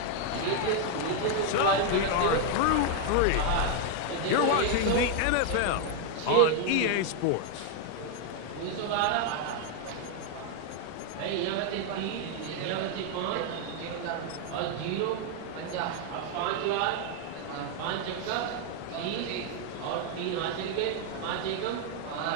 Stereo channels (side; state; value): both; different; correlation 0.00